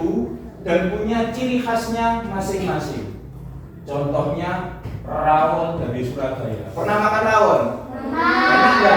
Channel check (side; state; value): both; identical; correlation 1.00